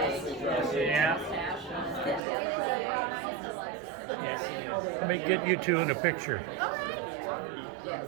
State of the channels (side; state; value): left; drops out; at 2.2 s